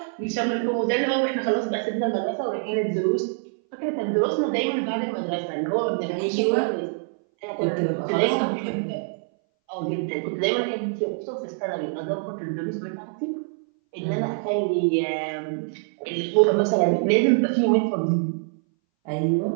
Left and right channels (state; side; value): silent; left; 60 dB below the other